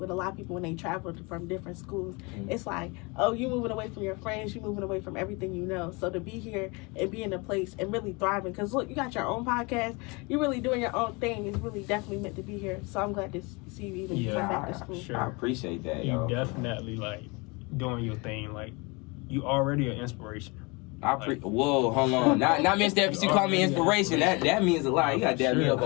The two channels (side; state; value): right; quieter; 27.9 dB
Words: a lot of people when they travel from different schools, it's like, oh, you moving away from your friends, you moving away from everything you know. So to be here and be in a place and really thriving, because look, you got your own podcast, you're really doing your own thing. It's really definitely meant to be here. So I'm glad to see you even come back to school. Sure. I appreciate that. You definitely doing your thing. You already an inspiration. Whoa, hold on. Not Mr. Epps, you call me inspiration. That means a lot. You gotta dab me up